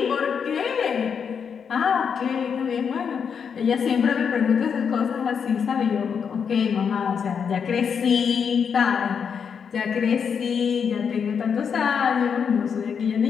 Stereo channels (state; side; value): quieter; right; 6.8 dB